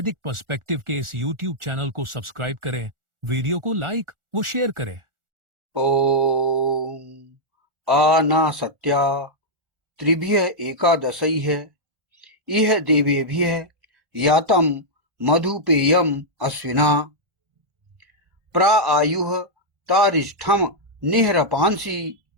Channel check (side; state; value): left; late; 1.4 ms